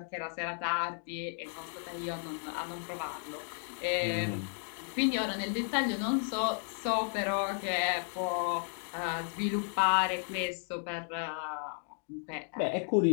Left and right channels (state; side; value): silent; right; 55 dB below the other